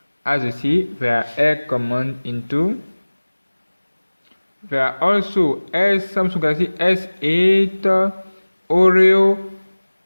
As you see, there are air command into. There are also Samsung Galaxy S8 Oreo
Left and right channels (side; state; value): both; inverted; correlation -1.00